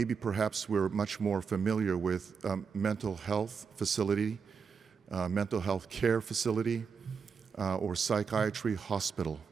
perhaps we're much more familiar with mental health facility, mental health care facility, or psychiatry hospital.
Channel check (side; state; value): left; quieter; 5.9 dB